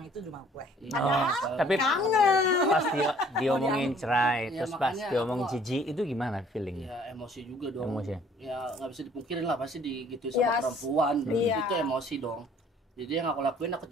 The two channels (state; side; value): normal; both; correlation 0.57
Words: itu di rumah gue. Oh, tapi Kangen. pas dia omongin cerai, Ya, terus pas makanya dia omong aku- jijik, itu gimana feelingnya? Ya emosi juga dong. Emosi. Ya nggak bisa dipungkirin lah pasti gitu sama Yes. perempuan. Iya. Itu emosi dong. Jadi yang aku lakuin aku